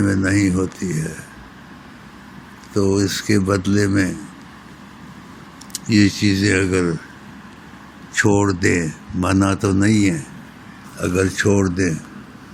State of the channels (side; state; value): both; identical; correlation 1.00